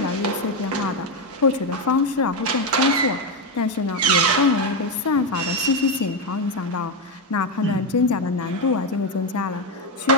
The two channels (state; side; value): normal; both; correlation 0.08